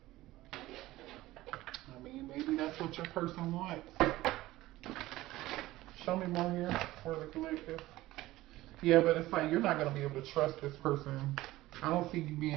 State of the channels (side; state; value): left; quieter; 17.1 dB